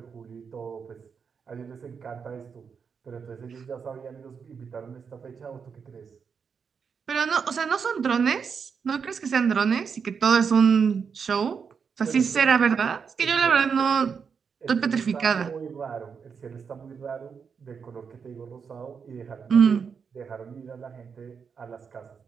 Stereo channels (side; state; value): left; quieter; 6.2 dB